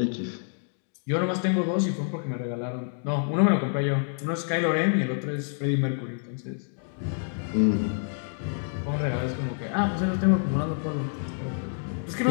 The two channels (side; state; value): right; silent; 60 dB below the other